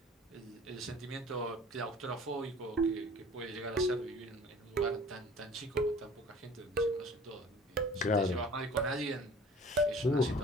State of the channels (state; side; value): normal; both; correlation 0.47